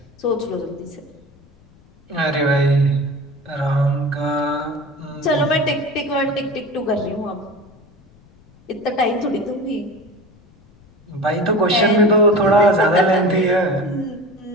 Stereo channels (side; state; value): left; noise; rumble, 29 dB below the sound